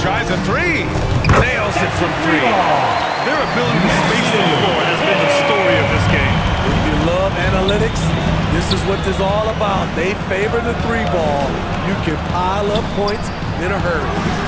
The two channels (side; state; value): both; identical; correlation 1.00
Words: tries a 3. Nails it from 3. Their ability to space the floor has been the story of this game. If you love analytics, this is what this is all about. They favor the 3-ball. You can pile up points in a hurry.